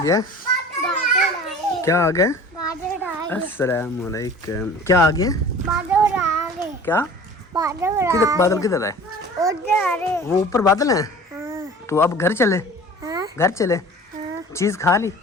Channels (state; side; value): normal; both; correlation 0.43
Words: क्या आ गया? अस्सलाम वालेकुम। क्या आ गया? क्या? किधर बादल किधर है? वो ऊपर बादल है। तो अब घर चले? घर चले? चीज खा ली?